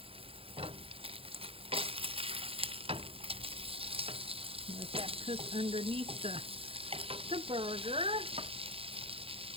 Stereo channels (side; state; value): left; late; 0.27 ms